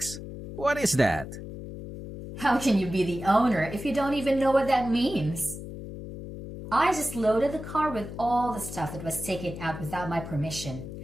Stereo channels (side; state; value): left; noise; hum, 10 dB below the sound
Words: What is that? How can you be the owner if you don't even know what that means? I just loaded the car with all the stuff that was taken out without my permission,